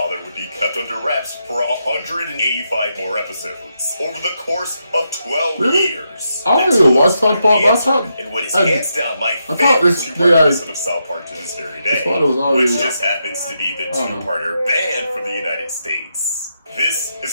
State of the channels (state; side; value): inverted; both; correlation -0.83